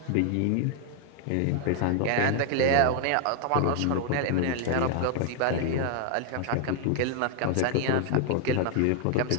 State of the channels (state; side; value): different; both; correlation 0.00